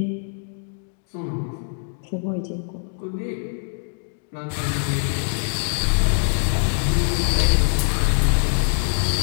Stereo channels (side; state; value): right; silent; digital silence